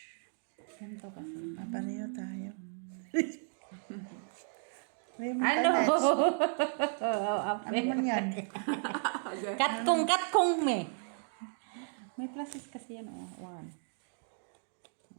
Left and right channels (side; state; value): left; silent; 55 dB below the other